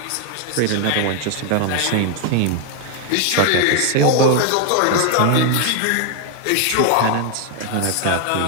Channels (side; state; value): both; different; correlation 0.01